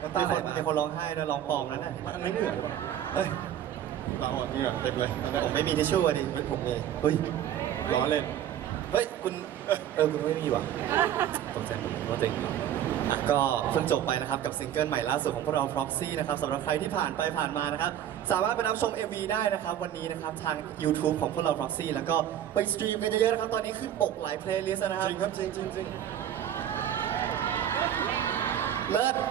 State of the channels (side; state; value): left; quieter; 10.7 dB